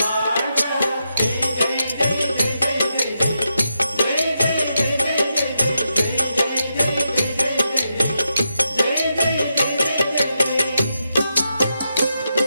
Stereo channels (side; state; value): both; inverted; correlation -0.85